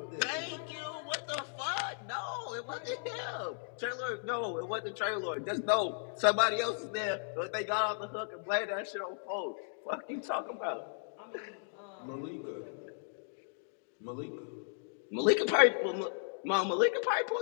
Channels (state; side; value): silent; right; digital silence